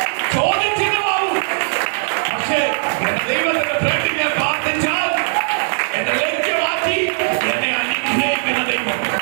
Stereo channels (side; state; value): left; silent; digital silence